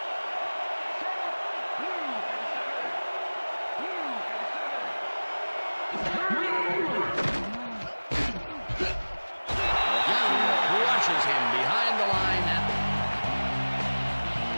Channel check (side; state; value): both; inverted; correlation -1.00